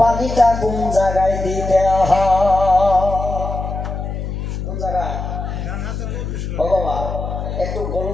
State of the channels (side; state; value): left; noise; hum, 5 dB below the sound